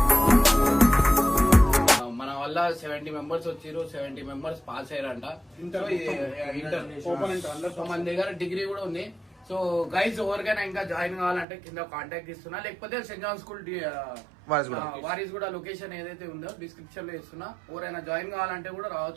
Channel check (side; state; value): left; drops out; at 11.5 s